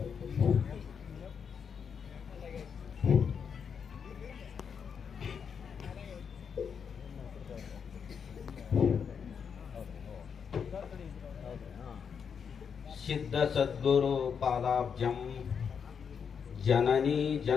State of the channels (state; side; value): quieter; right; 6.8 dB